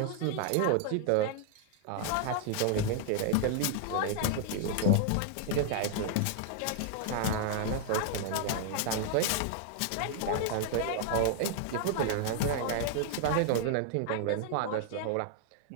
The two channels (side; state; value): both; different; correlation 0.00